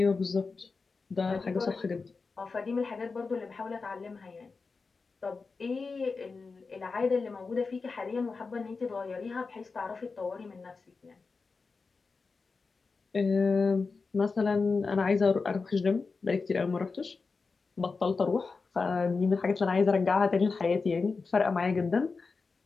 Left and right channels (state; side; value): quieter; right; 4.4 dB